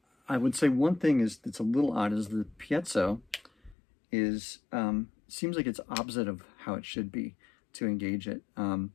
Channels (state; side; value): drops out; right; at 3.8 s